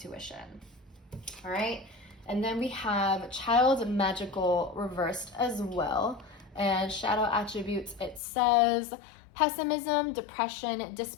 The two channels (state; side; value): drops out; right; at 8.2 s